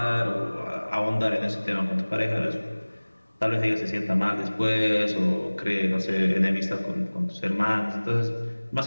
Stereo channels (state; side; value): inverted; both; correlation -1.00